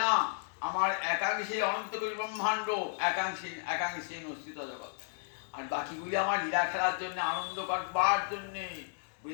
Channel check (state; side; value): silent; right; digital silence